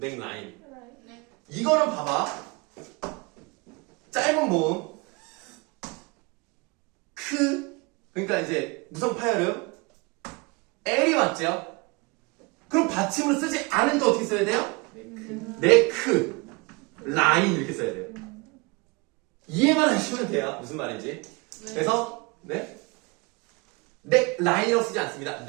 라인. 네. 이거는 봐봐. 짧은 모음 그러니까 이제 무성 파열음 L이 맞죠? 그럼 받침으로 쓰지 않으니까 어떻게 써야 돼요? 네크 라인 이렇게 써야 돼요. 이해만 하시면 돼요. 무슨 말인지. 그래서 네 라인이라고 쓰지 않습니다.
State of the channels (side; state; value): left; quieter; 27.8 dB